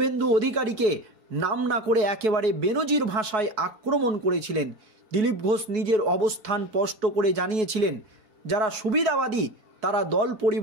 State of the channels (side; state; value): left; late; 4.6 ms